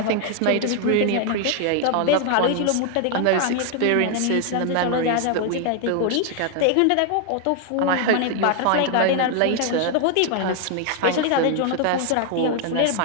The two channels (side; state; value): both; different; correlation 0.00